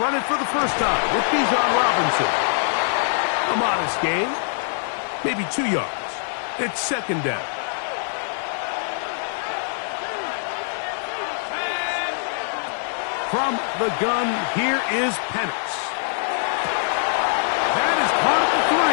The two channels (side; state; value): right; silent; digital silence